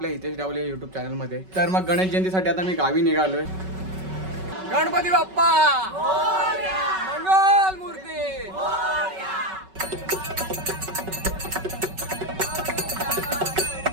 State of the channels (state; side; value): late; left; 5.3 ms